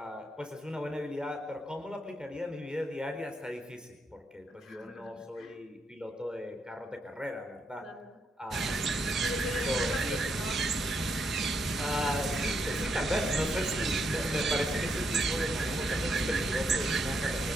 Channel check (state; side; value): normal; both; correlation 0.78